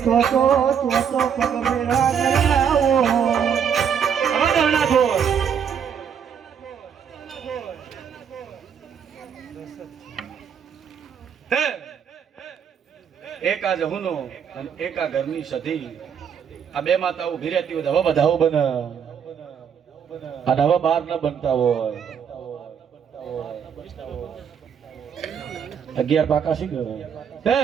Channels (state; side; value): quieter; left; 7.7 dB